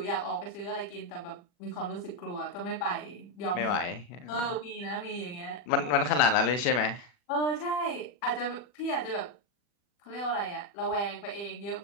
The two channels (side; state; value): right; late; 40 ms